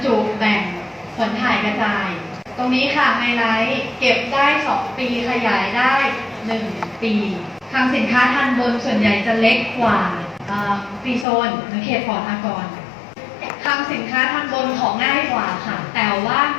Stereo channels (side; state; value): right; drops out; at 11.2 s